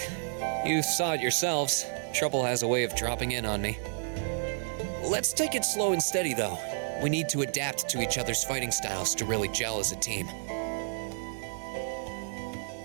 You saw it yourselves. Trouble has a way of dropping in on me. Let's take it slow and steady, though. We need to adapt to each other's fighting styles to really gel as a team.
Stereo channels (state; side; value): silent; left; digital silence